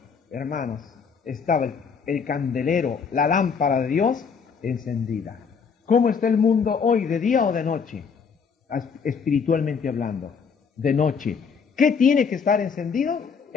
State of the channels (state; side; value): quieter; right; 6.0 dB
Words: hermanos, estaba el candelero, la lámpara de Dios encendida. ¿Cómo está el mundo hoy, de día o de noche? Espiritualmente hablando, de noche. ¿Qué tiene que estar encendido?